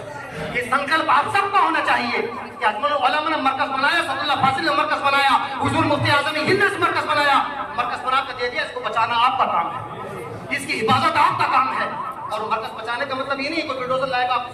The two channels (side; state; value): both; identical; correlation 1.00